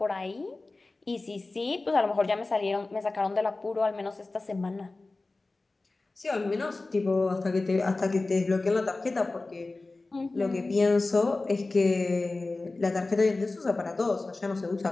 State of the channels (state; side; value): quieter; right; 3.3 dB